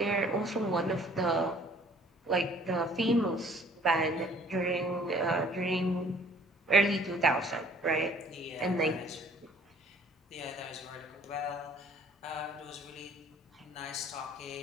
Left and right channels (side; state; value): both; normal; correlation 0.55